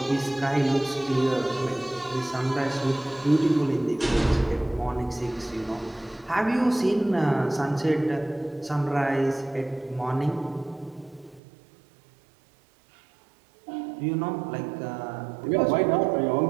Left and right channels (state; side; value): drops out; left; at 11.4 s